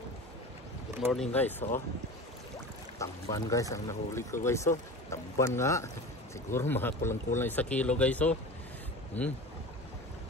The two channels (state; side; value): normal; both; correlation 0.33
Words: good morning guys. Tamban guys ang nahuli ko guys. Tamban nga, siguro mga kulang-kulang 1 kilo guys. Dami